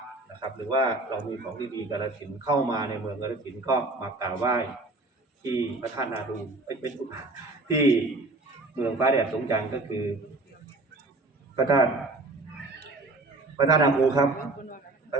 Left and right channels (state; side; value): quieter; left; 3.1 dB